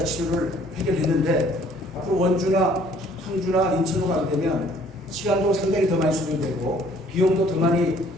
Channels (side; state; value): both; normal; correlation 0.58